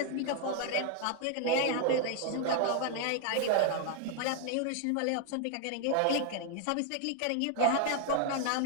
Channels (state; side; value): different; both; correlation 0.00